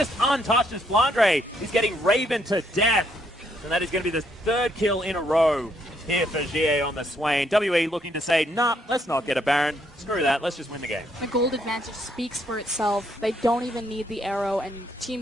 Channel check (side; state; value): both; normal; correlation 0.72